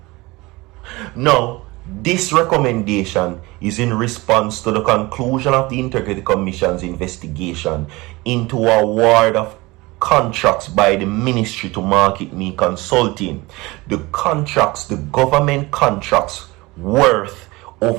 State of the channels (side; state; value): left; quieter; 22.2 dB